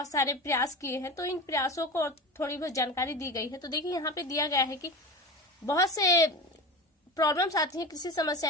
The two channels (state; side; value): normal; both; correlation 0.29